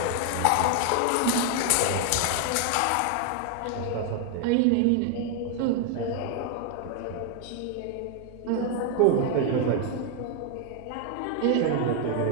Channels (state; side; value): different; both; correlation 0.00